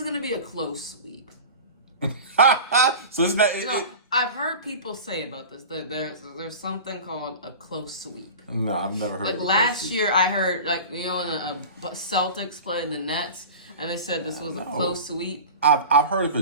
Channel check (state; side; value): inverted; both; correlation -0.33